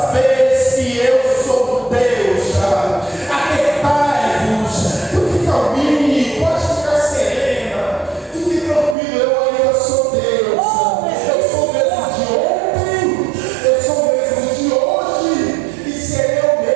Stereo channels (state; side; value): drops out; left; at 9.0 s